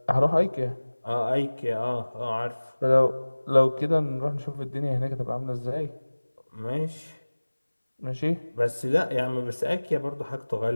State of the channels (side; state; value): both; inverted; correlation -1.00